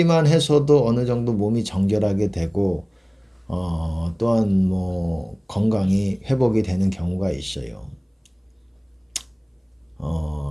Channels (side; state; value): both; identical; correlation 1.00